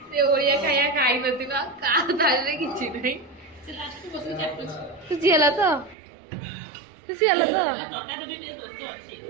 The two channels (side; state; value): left; drops out; at 6.0 s